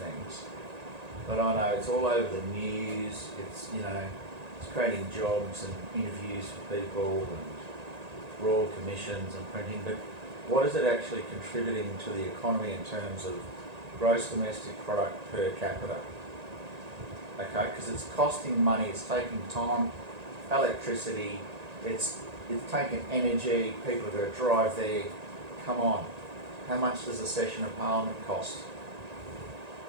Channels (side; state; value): left; late; 1.9 ms